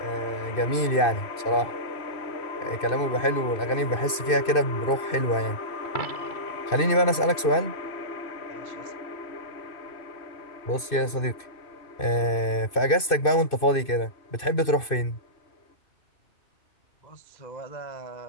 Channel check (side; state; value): right; late; 2.5 ms